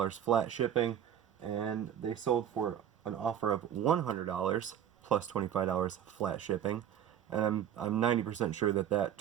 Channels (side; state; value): left; quieter; 9.8 dB